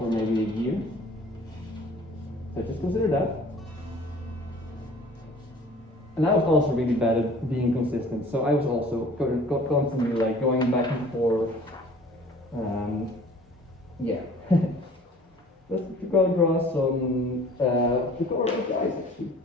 maybe a year. So just consider that. And I was also really bad at being consistent, so I was also constantly like going back and forth. Yeah. Let's go draw some the color of the eyes actually.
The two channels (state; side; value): normal; both; correlation 0.49